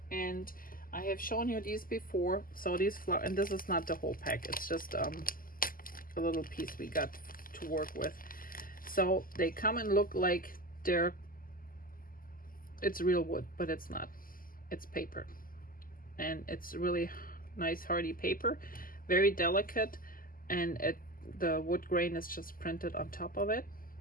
And I have shown you these before. So these and this is not the whole pack, it's just a little piece we got to work with. So they come and look like it's real wood, but it's not. It's paper, and it's really nice hardy paper, very delicate, and the wood grain is just printed on top of it,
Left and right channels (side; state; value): right; late; 0.41 ms